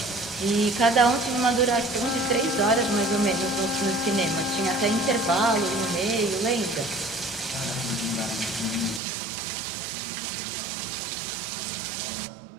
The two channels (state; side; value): drops out; left; at 9.0 s